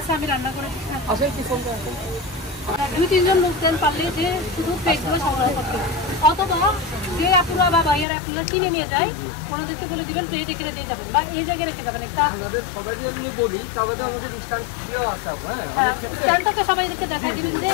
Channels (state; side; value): drops out; right; at 8.1 s